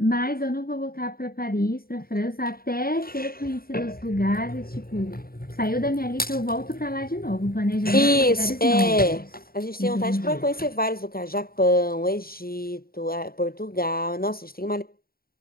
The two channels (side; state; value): right; late; 0.43 ms